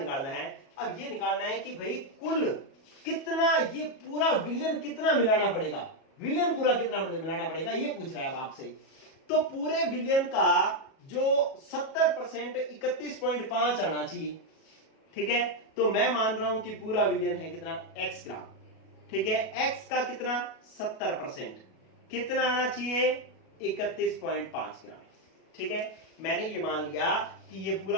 है? अब ये निकालना है कि भाई कुल कितना, ये पूरा विलयन कितना मिलाना पड़ेगा, विलयन पूरा कितना मिलाना पड़ेगा, ये पूछ रहा है अब आपसे। तो पूरे विलयन का जो 70% 31.5 आना चाहिए। ठीक है, तो मैं मान रहा हूं कि पूरा विलयन है कितना? x ग्राम। ठीक है, x का कितना? 70%, कितना आना चाहिए? 31.5 ग्राम। ठीक है, मैंने ये मान लिया कि ये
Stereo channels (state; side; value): late; right; 37 ms